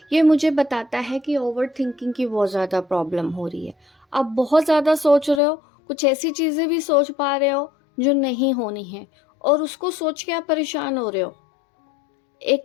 ये मुझे बताता है कि ओवर थिंकिंग की बहुत ज़्यादा प्रॉब्लम हो रही है। आप बहुत ज़्यादा सोच रहे हो, कुछ ऐसी चीज़ें भी सोच पा रहे हो जो नहीं होनी है, और उसको सोच के आप परेशान हो रहे हो।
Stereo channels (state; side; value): drops out; right; at 5.4 s